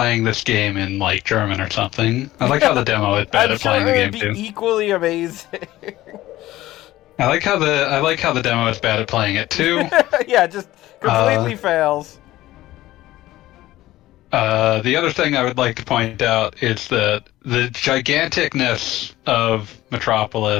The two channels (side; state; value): right; quieter; 16.0 dB